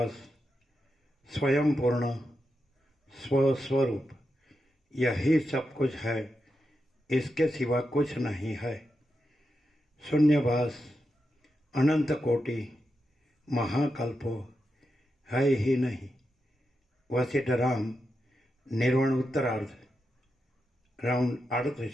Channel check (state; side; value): normal; both; correlation 0.87